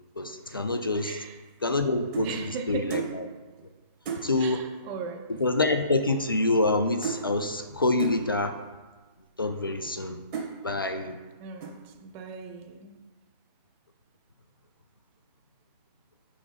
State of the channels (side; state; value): both; inverted; correlation -0.53